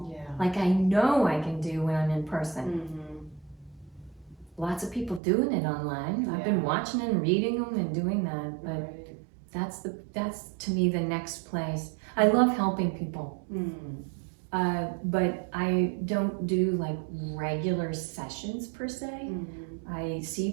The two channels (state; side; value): drops out; left; at 5.2 s